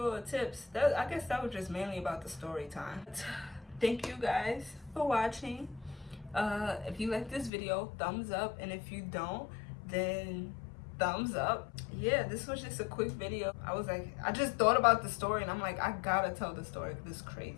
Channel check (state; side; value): drops out; right; at 7.5 s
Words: the tips. I guess that was just mainly about the story time. Thank you guys for watching. If you like this video, thumbs up, and if you don't, then thumbs up. Yeah, this was just a quick video. I just thought about the story, and I'm like, I gotta tell the story. This is